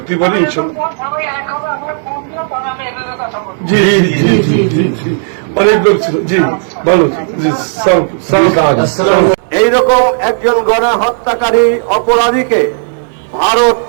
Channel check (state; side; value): silent; left; digital silence